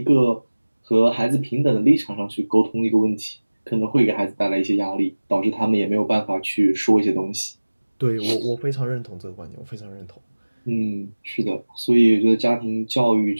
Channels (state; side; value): inverted; both; correlation -1.00